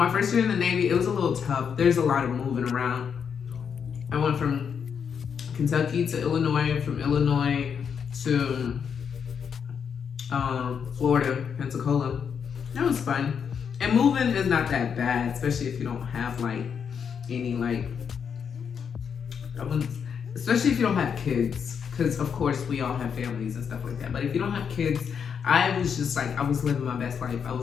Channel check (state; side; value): quieter; right; 7.0 dB